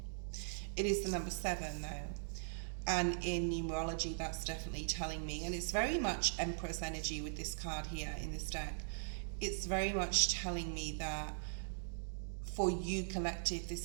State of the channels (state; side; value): silent; left; digital silence